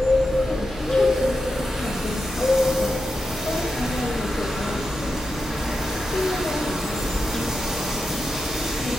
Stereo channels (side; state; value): both; normal; correlation 0.88